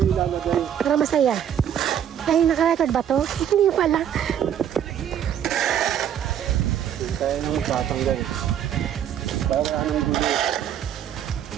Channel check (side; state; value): left; quieter; 9.6 dB